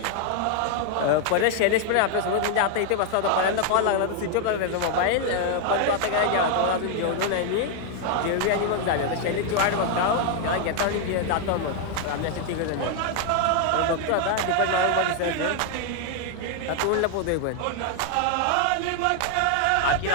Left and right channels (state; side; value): different; both; correlation 0.00